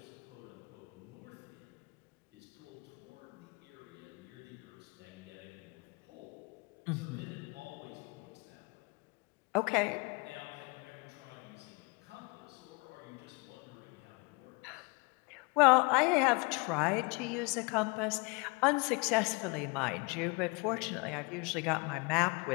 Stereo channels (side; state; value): right; quieter; 29.3 dB